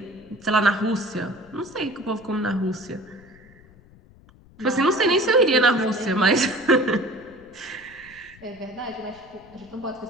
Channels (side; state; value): left; noise; rumble, 25 dB below the sound